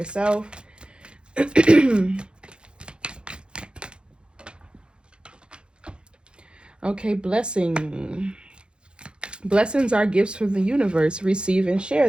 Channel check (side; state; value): left; late; 0.053 ms